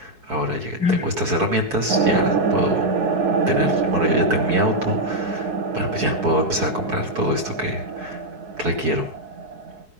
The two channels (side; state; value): left; late; 4.7 ms